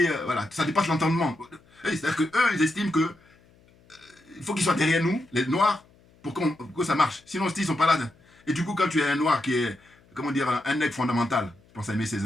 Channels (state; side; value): noise; left; hum, 30 dB below the sound